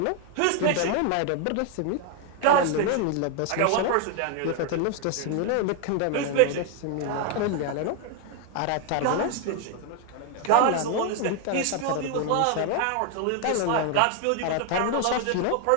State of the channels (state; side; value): different; both; correlation 0.00